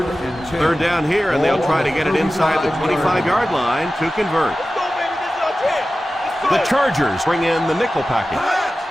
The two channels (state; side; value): normal; both; correlation 0.95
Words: Third down here, and they'll try to get it inside the 25-yard line to convert. The Chargers bring in the nickel package.